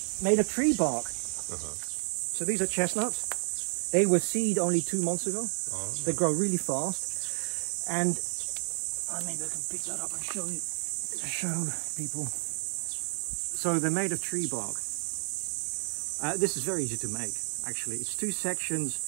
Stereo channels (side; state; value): left; silent; 57 dB below the other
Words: made of tree bark. So these are chestnuts. They were seed only 2 months ago. They grow really fast. And maybe I can pick that up and show people. So they're made of tree bark. This is very easy to make, actually. It's 2 sections,